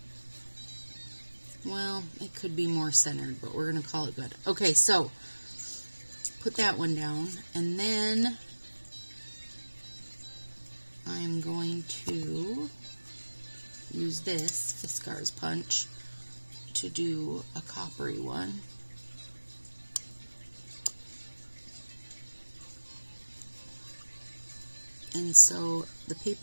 Well, it could be more centered, but we're going to call it good. Okay, so put that one down, and then I'm going to use this Fiskars punch to do a coppery one. And so the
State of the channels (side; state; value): both; inverted; correlation -1.00